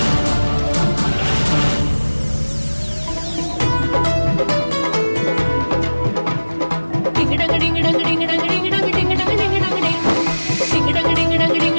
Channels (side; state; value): both; inverted; correlation -1.00